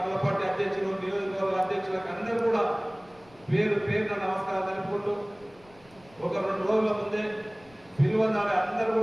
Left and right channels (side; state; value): left; noise; rumble, 27 dB below the sound